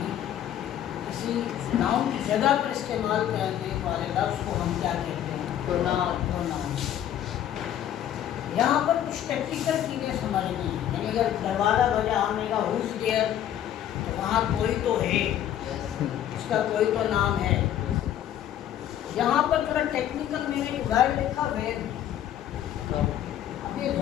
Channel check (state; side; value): quieter; right; 11.0 dB